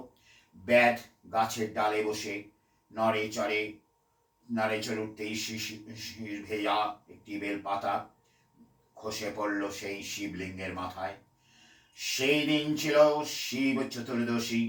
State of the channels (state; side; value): identical; both; correlation 1.00